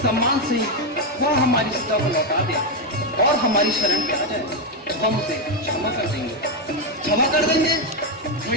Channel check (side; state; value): both; normal; correlation 0.05